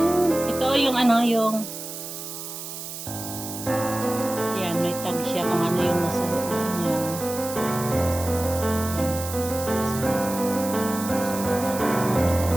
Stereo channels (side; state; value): right; noise; hiss, 9 dB below the sound